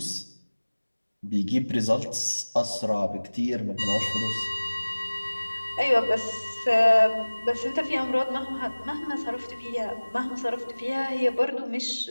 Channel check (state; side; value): inverted; both; correlation -1.00